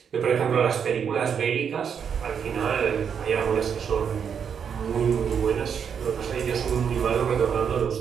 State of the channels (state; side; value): quieter; left; 7.3 dB